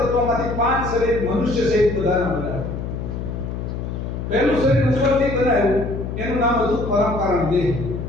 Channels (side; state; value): left; noise; hum, 5 dB below the sound